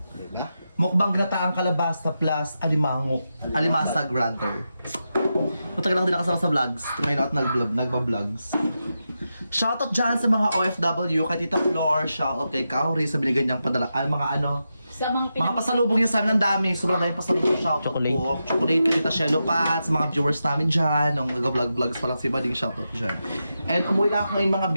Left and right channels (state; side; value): inverted; both; correlation -0.88